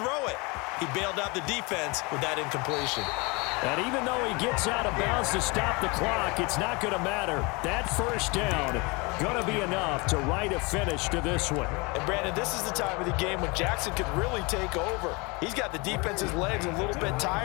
throw it. He bailed out the defense with that incompletion. And even though he gets out of bounds to stop the clock, it's not going to matter. That first down going to be enough to write a finish to this one. And, Brandon, this is the time of the game when Jackson could really take over. He's got the defense's legs a little bit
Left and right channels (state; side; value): quieter; right; 27.7 dB